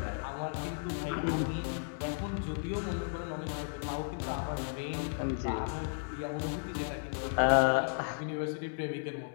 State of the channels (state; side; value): silent; right; digital silence